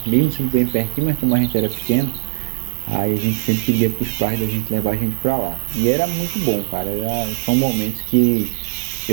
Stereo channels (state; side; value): silent; left; digital silence